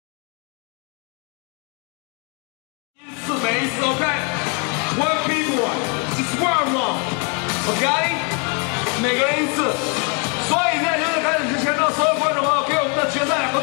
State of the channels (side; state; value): right; quieter; 35.5 dB